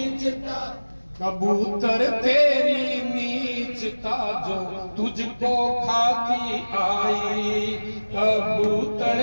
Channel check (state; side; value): inverted; both; correlation -1.00